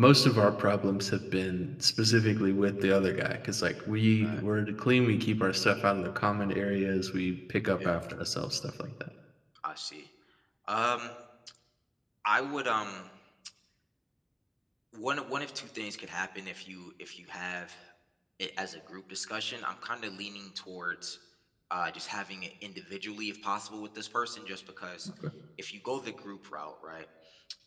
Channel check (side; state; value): both; identical; correlation 1.00